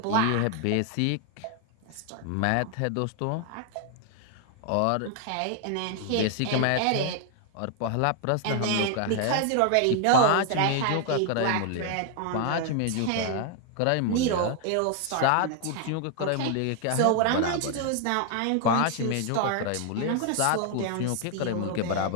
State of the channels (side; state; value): both; different; correlation 0.00